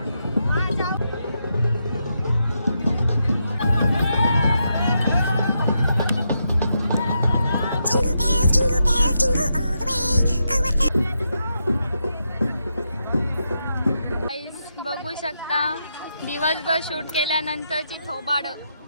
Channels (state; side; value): inverted; both; correlation -0.83